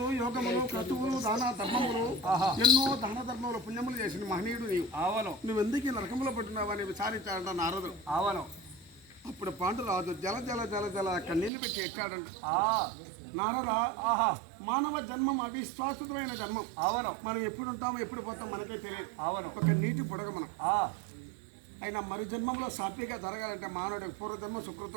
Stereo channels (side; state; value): left; drops out; at 11.5 s